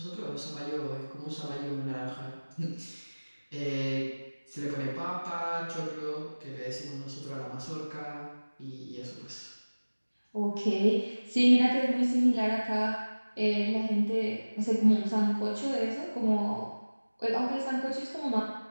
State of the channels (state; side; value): inverted; both; correlation -1.00